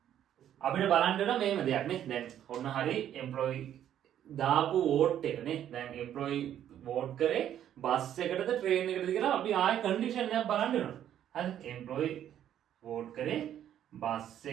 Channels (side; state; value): left; quieter; 10.6 dB